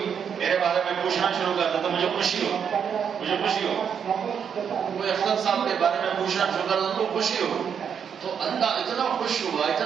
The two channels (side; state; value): left; quieter; 7.5 dB